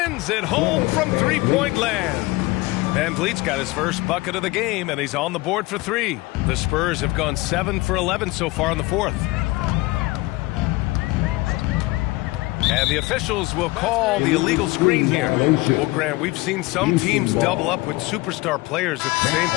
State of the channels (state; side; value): quieter; right; 21.3 dB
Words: it home from three-point land. Van Vliet's got his first bucket of the game, and he's on the board for 3. The Spurs have gone 7 for 11 so far in the fourth. And the officials will call the illegal screen here. Well, Grant, we've seen some teams double up with superstar players at the same